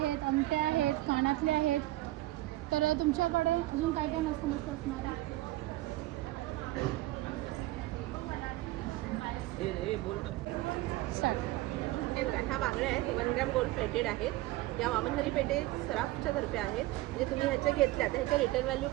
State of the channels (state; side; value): quieter; left; 17.6 dB